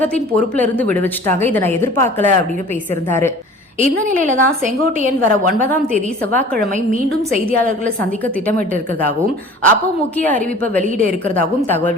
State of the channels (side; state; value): both; normal; correlation 0.45